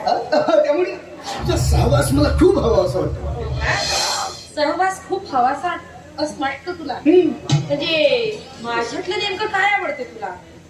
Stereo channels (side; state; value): both; identical; correlation 1.00